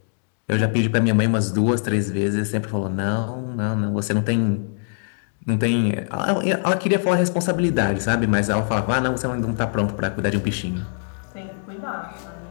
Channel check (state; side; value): silent; right; digital silence